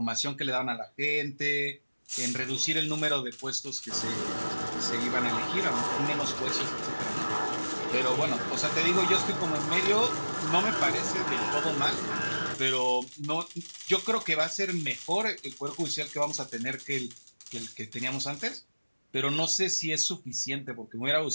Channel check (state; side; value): inverted; both; correlation -1.00